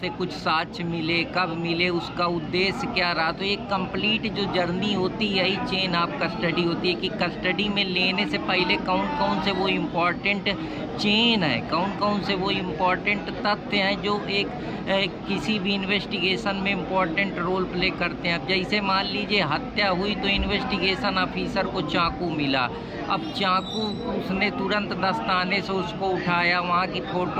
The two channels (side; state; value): both; identical; correlation 1.00